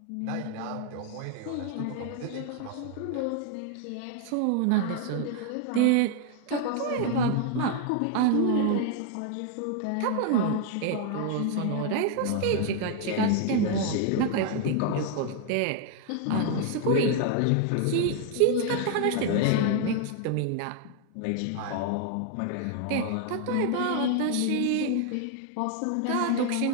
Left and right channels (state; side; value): different; both; correlation 0.00